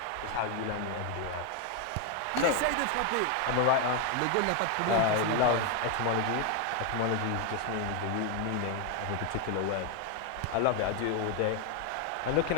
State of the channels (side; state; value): both; different; correlation 0.01